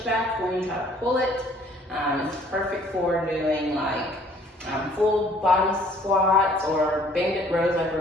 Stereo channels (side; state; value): both; normal; correlation 0.58